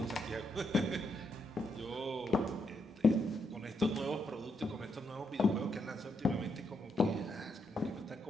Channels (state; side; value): normal; both; correlation 0.79